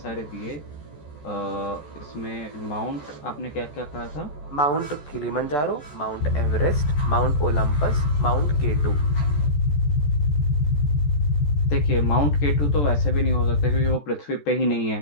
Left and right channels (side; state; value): right; late; 14 ms